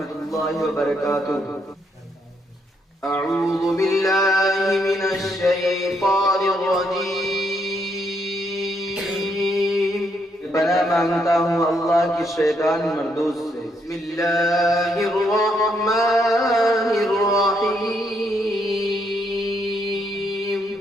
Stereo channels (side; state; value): both; normal; correlation 0.75